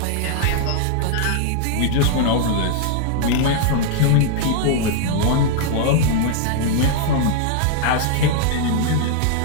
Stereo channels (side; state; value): both; different; correlation 0.00